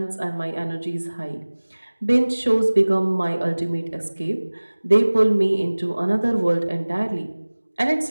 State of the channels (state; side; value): inverted; both; correlation -1.00